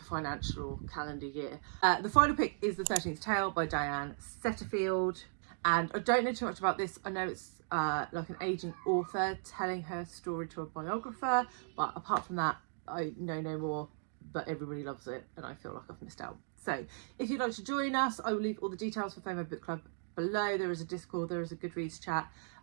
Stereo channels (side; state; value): left; silent; digital silence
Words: financial, or calendar year. The final pick is The 13th Tale by Diane Setterfield. And I don't know too much about this. I know it's like an aging author telling her story to a biographer, but apart from that, I know no more, but everybody loves it and I feel like I've missed out. So if you'd like to join us, I will leave all the details for FOMO Book Club below. There is a Discord, there is a Goodreads chat,